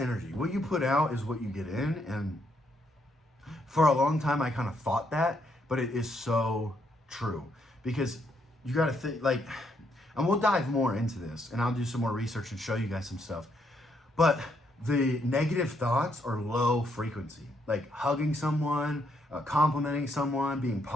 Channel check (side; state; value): both; normal; correlation 0.75